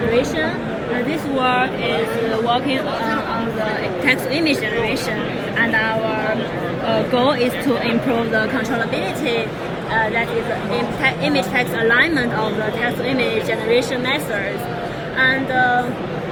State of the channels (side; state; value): both; identical; correlation 1.00